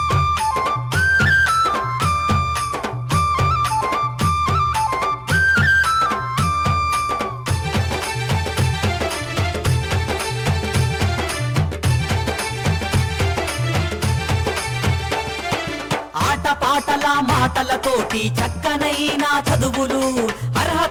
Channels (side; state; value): both; identical; correlation 1.00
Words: పాటల మాటలతోటి చక్కనైన చదువులు,